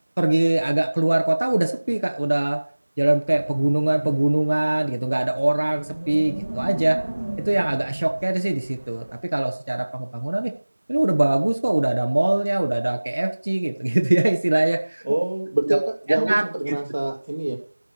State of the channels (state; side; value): inverted; both; correlation -1.00